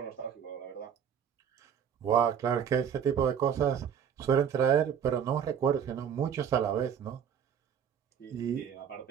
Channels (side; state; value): left; quieter; 8.1 dB